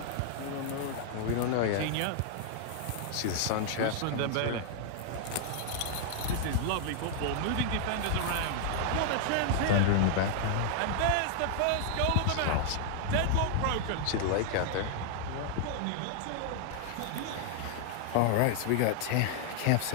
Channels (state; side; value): different; both; correlation -0.01